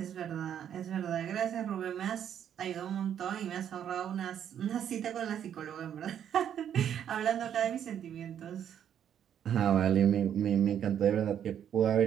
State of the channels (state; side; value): quieter; left; 9.4 dB